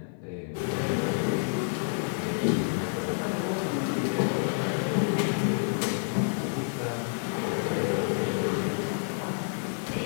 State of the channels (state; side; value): silent; right; 59 dB below the other